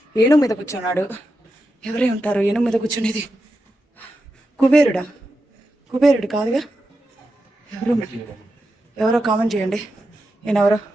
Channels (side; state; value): both; normal; correlation 0.88